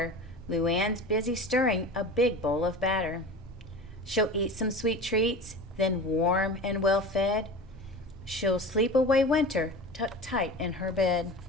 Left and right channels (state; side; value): normal; both; correlation 0.33